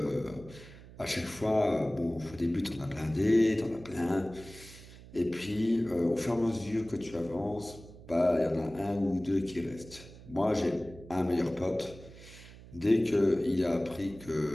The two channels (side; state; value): right; noise; hum, 18 dB below the sound